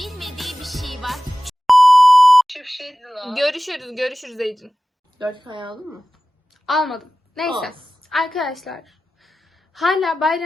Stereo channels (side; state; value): both; normal; correlation 0.95